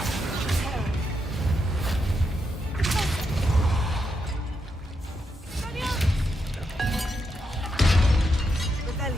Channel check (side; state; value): both; normal; correlation 0.82